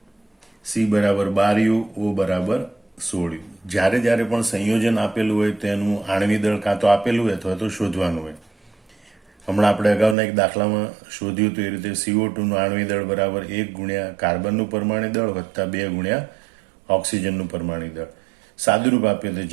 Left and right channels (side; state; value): left; drops out; at 10.2 s